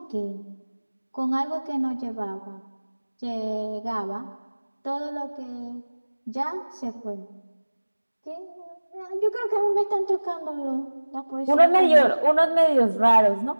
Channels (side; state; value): both; inverted; correlation -1.00